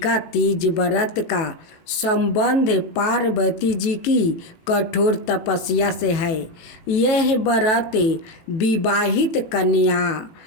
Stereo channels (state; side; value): late; right; 18 ms